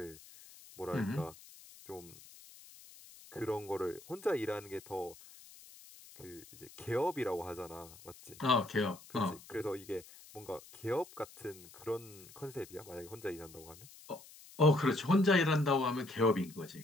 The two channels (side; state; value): left; noise; hiss, 20 dB below the sound